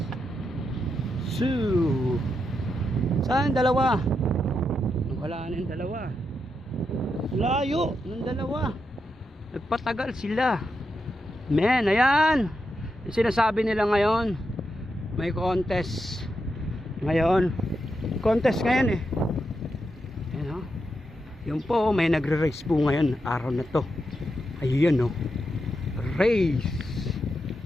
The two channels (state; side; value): normal; both; correlation 0.85